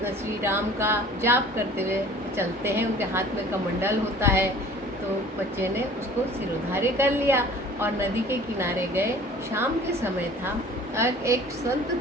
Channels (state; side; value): normal; both; correlation 0.47